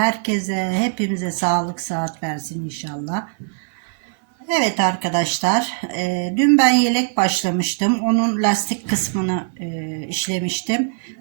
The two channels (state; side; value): silent; left; 63 dB below the other